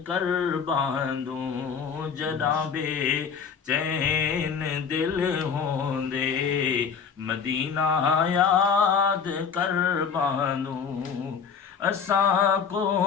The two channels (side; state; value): right; quieter; 6.5 dB